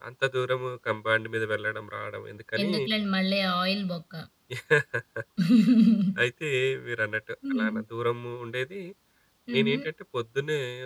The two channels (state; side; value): identical; both; correlation 1.00